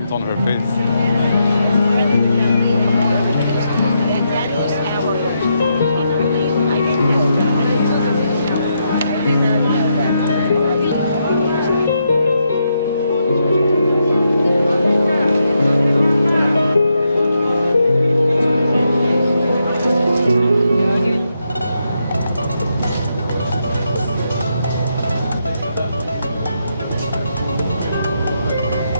on her face.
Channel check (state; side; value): inverted; both; correlation -0.81